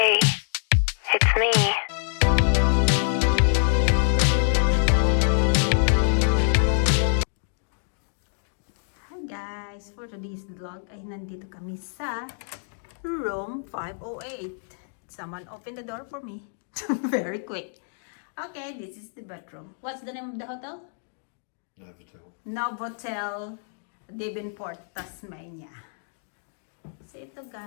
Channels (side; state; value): right; silent; digital silence